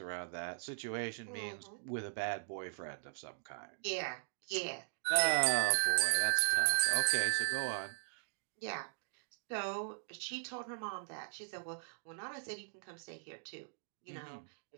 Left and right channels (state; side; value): silent; left; digital silence